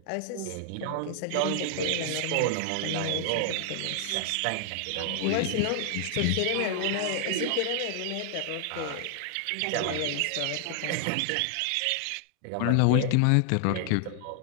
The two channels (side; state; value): both; different; correlation 0.00